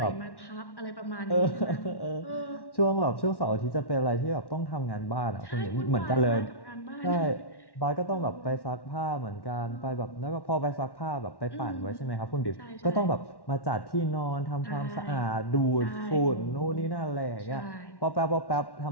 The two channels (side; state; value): right; late; 1.1 ms